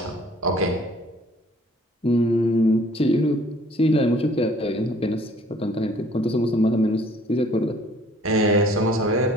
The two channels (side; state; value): both; normal; correlation 0.56